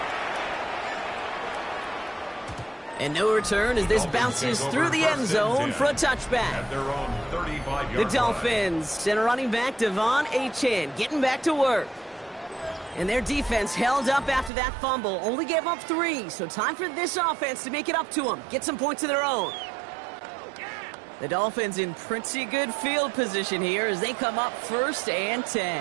And no return as this bounces through the end zone for a touchback. At their own 35-yard The line. Dolphins send a running back, Devon Achane, getting back to work. And their defense held up after that fumble. Only gave up 3, so time for this offense to make it up to them. Get some points of their own. The Dolphins in pretty good field position here as they come up 1st and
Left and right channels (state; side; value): drops out; left; at 14.5 s